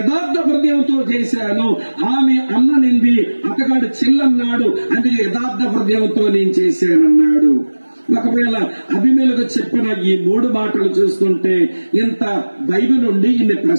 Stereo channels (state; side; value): inverted; both; correlation -1.00